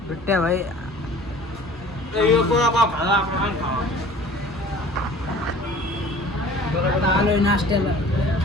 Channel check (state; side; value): normal; both; correlation 0.46